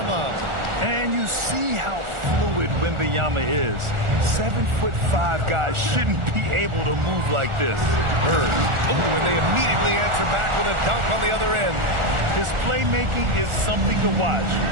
And you see how fluid Wembanyama is. 7'5" guys shouldn't be able to move like this. Bird. Oh, and they immediately answer back with a dunk on the other end. His playmaking is something to watch.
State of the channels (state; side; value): late; left; 1.4 ms